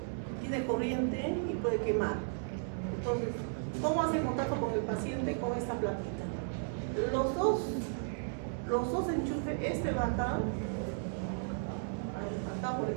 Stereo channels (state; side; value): silent; left; digital silence